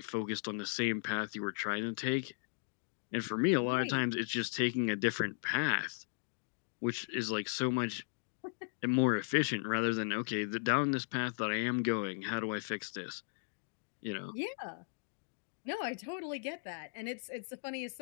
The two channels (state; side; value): silent; right; digital silence